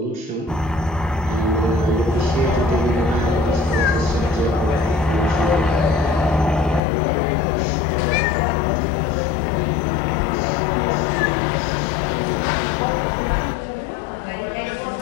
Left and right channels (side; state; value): right; drops out; at 6.8 s